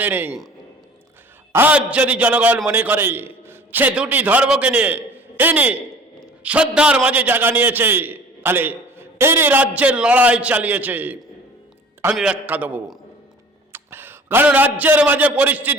নেই। আজ যদি জনগণ মনে করে সে দুটি ধর্মকে নিয়ে ইনি শ্রদ্ধার মাঝে জায়গা নিয়েছে, তাহলে ইনি রাজ্যের লড়াই চালিয়েছে। আমি ব্যাখ্যা দেব। কারণ রাজ্যের মাঝে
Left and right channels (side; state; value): both; normal; correlation 0.47